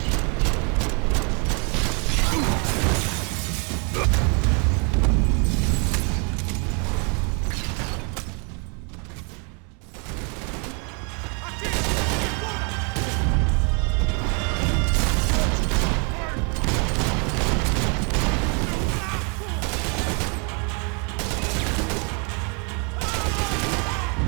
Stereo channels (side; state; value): left; quieter; 35.6 dB